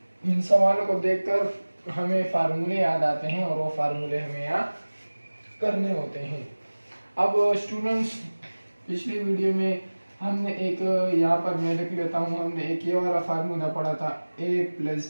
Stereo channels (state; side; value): inverted; both; correlation -1.00